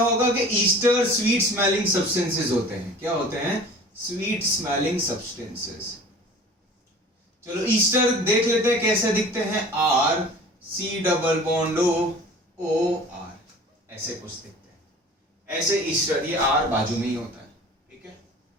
कि ईस्टर स्वीट स्मेलिंग सब्सटेंसेस होते हैं। क्या होते हैं? Sweet smelling substances. चलो ईस्टर देख लेते हैं कैसे दिखते हैं। R C double bond O R, ऐसे कुछ दिखते हैं। ऐसे ईस्टर, ये आर बाजू में ही होता है, ठीक है।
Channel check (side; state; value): both; normal; correlation 0.43